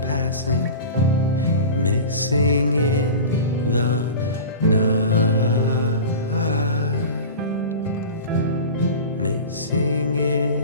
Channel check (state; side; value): inverted; both; correlation -0.33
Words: missing in the night, missing